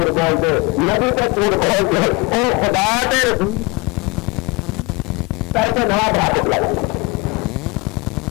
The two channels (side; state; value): right; quieter; 26.0 dB